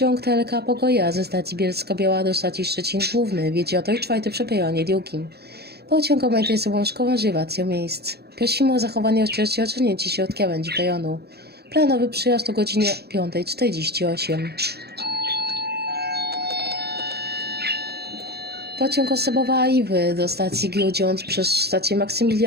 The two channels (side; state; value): left; late; 0.47 ms